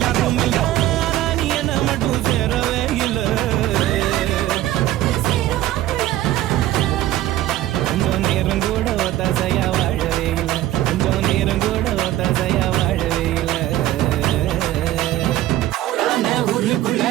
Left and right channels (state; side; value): quieter; left; 14.4 dB